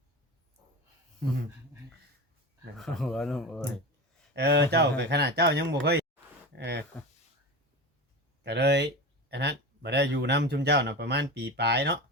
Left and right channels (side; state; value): both; normal; correlation 0.26